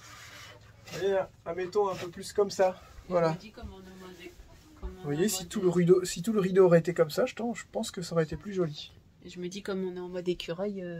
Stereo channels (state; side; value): identical; both; correlation 1.00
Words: Et admettons un peu plus comme ça. Voilà. Vous voyez, si tout le rideau aurait été comme ça, je pense que ça aurait été plus joli. Et je me dis, comme on est en mode écureuil,